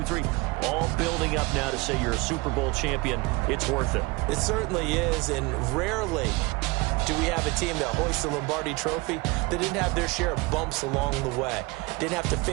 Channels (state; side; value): quieter; left; 24.2 dB